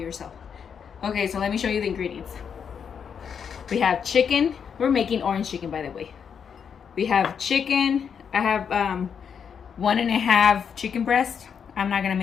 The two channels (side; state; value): right; quieter; 7.1 dB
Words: Okay, so let me show you the ingredients. We have chicken. We're making orange chicken, by the way. We have chicken. I have 1.5 chicken breast. I'm not gonna